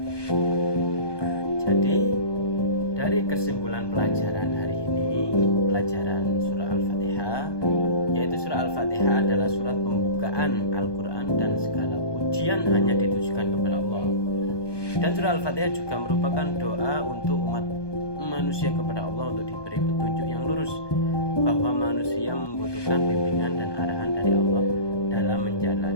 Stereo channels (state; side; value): late; right; 1.2 ms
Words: Jadi dari kesimpulan pelajaran hari ini, pelajaran surah Al-Fatihah, yaitu surah Al-Fatihah adalah surat pembukaan Al-Quran dan segala pujian hanya ditujukan kepada Allah. Dan surah Al-Fatihah juga merupakan doa untuk umat manusia kepada Allah untuk diberi petunjuk yang lurus, bahwa manusia membutuhkan bimbingan dan arahan dari Allah dalam